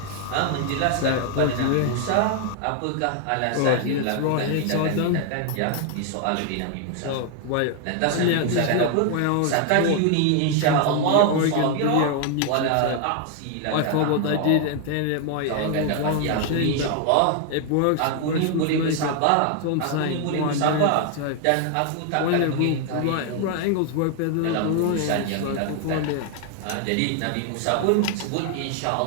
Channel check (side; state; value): both; different; correlation 0.00